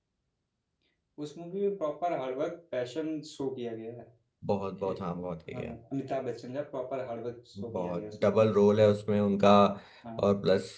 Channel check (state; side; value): identical; both; correlation 1.00